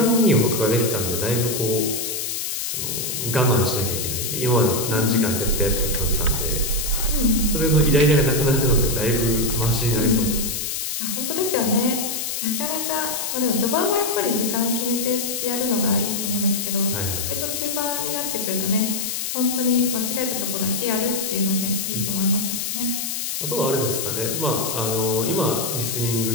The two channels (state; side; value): noise; left; hiss, 2 dB below the sound